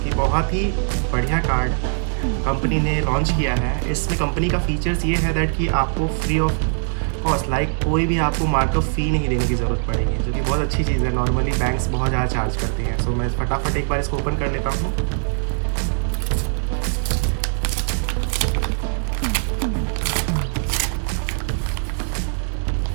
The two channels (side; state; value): left; silent; 65 dB below the other